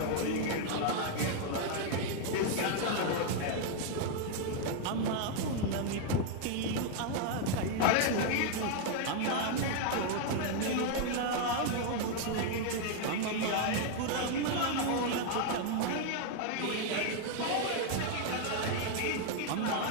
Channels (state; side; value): different; both; correlation 0.00